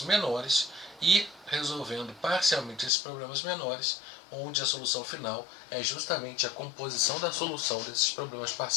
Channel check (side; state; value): right; drops out; at 2.9 s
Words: menores e resolvendo parcialmente esses problemas menores, onde a solução final é justamente a composição da solução desses problemas